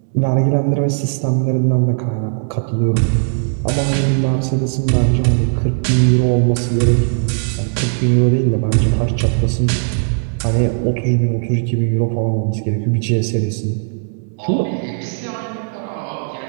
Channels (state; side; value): silent; left; digital silence